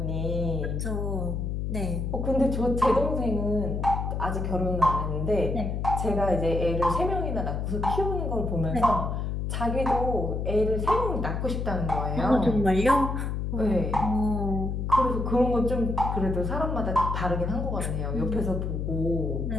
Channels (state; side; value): noise; left; hum, 2 dB below the sound